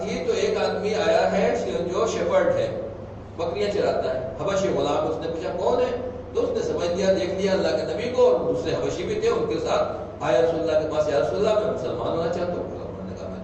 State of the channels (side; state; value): both; identical; correlation 1.00